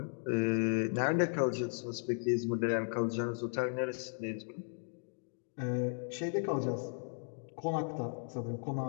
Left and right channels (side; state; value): right; silent; 54 dB below the other